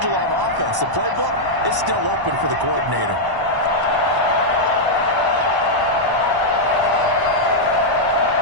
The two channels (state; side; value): late; left; 1.0 ms